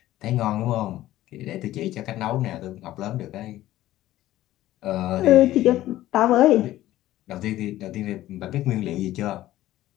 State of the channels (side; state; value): right; quieter; 14.7 dB